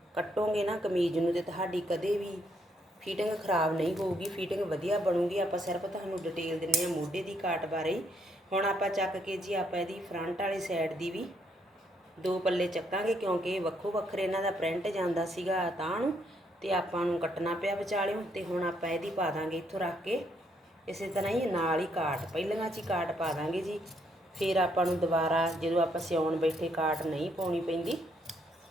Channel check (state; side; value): normal; both; correlation 0.73